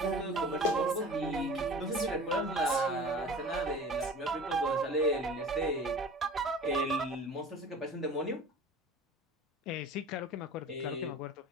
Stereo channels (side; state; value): both; normal; correlation 0.40